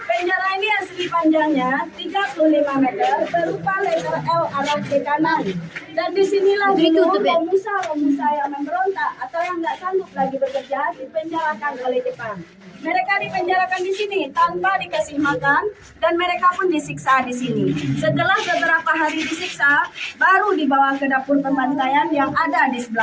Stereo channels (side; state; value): both; identical; correlation 1.00